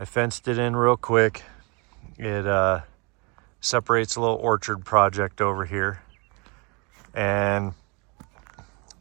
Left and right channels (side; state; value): left; quieter; 30.2 dB